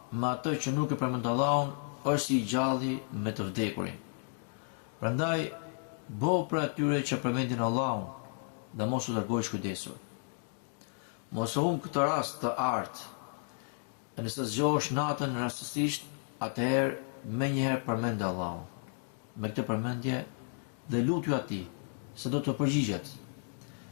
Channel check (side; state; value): right; silent; 56 dB below the other